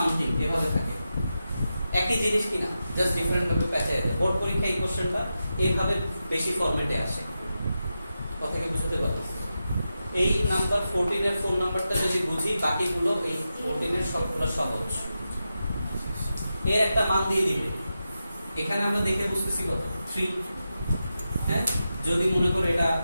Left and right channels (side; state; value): both; inverted; correlation -0.90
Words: এভাবে থাকে, একই জিনিস কিনা, জাস্ট ডিফারেন্ট ভাবে প্যাচায় দেয়। বোর্ড পরীক্ষায় এই কোশ্চেনটা এইভাবে বেশি ফরম্যাটে আসে, কথা কি বুঝতে পারছো? এই নাম্বার 14 এর ফোন নাম্বারটা যদি বুঝি, বাকিগুলো এই 14 এর সবগুলো সহজ। এর একটা মান দিয়ে দিবে, এখানে আমরা দেখে বুঝতেছি কত 3, হ্যাঁ। যদি মনে করে এটা